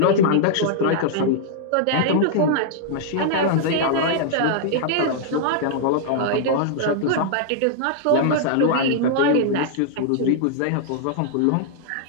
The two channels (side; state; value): both; different; correlation -0.01